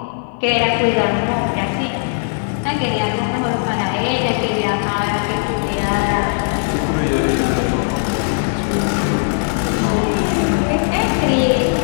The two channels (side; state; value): right; silent; 57 dB below the other